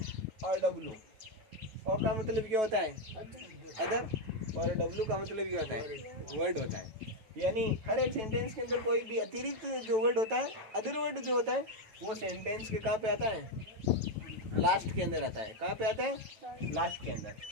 और डब्लू। और का मतलब क्या होता है? अदर। और डब्लू का मतलब क्या होता है? वर्ड होता है। यानी हर एक सेंटेंस के अंदर कोई भी अतिरिक्त जो वर्ड होता है, अदर वर्ड जो होता है, वो सेंटेंस के कहाँ पे आता है? लास्ट के अंदर आता है। कहाँ पे आता है? लास्ट के अंदर।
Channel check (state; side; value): late; left; 9.1 ms